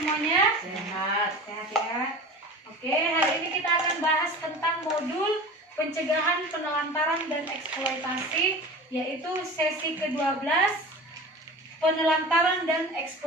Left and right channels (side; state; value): both; normal; correlation 0.35